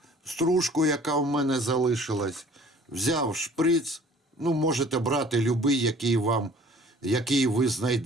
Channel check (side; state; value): both; normal; correlation 0.52